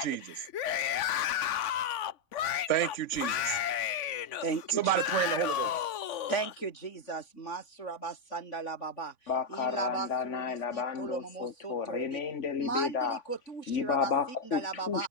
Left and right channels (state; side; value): late; right; 3.5 ms